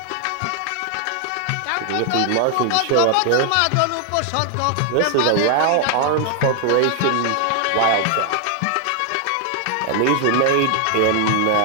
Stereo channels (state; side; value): different; both; correlation 0.00